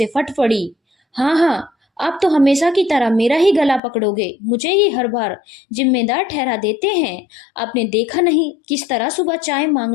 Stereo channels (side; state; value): right; drops out; at 3.8 s